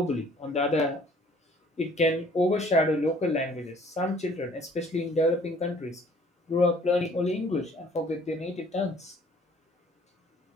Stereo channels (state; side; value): normal; both; correlation 0.56